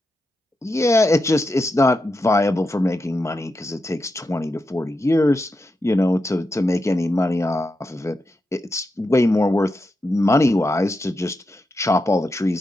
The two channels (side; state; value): both; normal; correlation 0.87